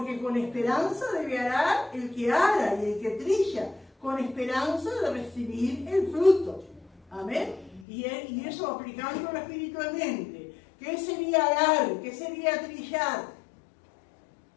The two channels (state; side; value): drops out; right; at 7.9 s